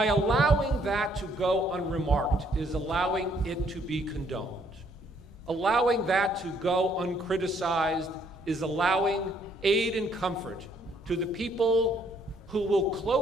allowing that to go unremarked is allowing it to be condoned. Allowing that to go uncriticized is allowing aid and comfort to the people who will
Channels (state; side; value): normal; both; correlation 0.67